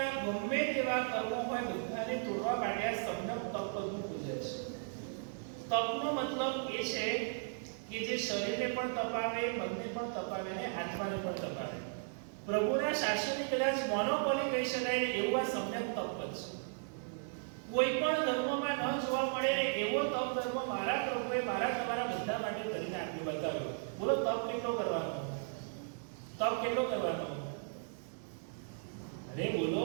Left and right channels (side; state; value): left; silent; 54 dB below the other